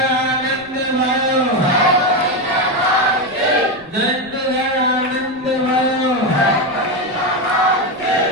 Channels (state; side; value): noise; right; rumble, 26 dB below the sound